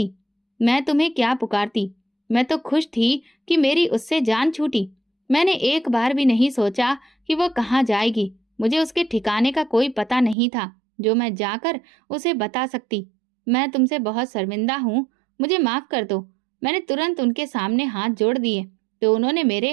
मैं तुम्हें क्या पुकारती? मैं तो खुश थी कि मेरी उससे जान छूटी। मैंने एक बार भी नहीं सोचा कि वो कहाँ जाएगी। मुझे उसके ठिकाने का कोई पता नहीं था जो मैं जाकर उसे बता सकती। मैं तुमसे बहुत शर्मिंदा हूँ, मुझे माफ कर दो। मैंने तुरंत उनके सामने हाथ जोड़ दिए तो उन्होंने मेरे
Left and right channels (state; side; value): drops out; left; at 10.4 s